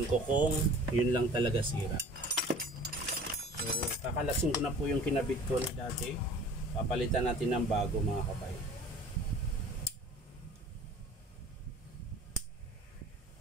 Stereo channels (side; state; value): both; normal; correlation 0.45